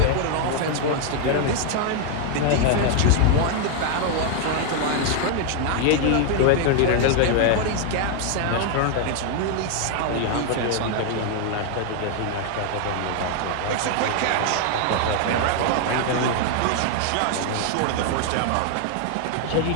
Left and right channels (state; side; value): different; both; correlation 0.00